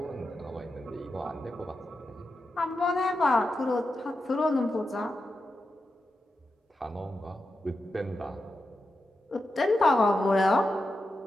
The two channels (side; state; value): both; normal; correlation 0.89